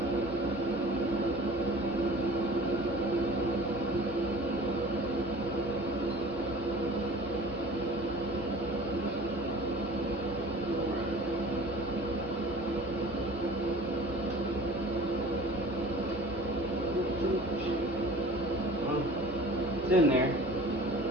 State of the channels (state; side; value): normal; both; correlation 0.43